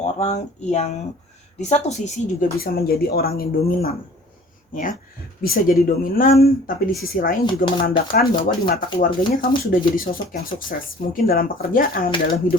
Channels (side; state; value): both; normal; correlation 0.49